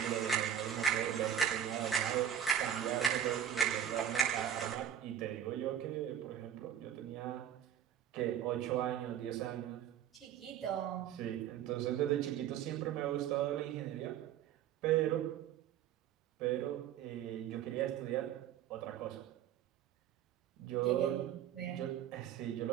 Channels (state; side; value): quieter; left; 9.9 dB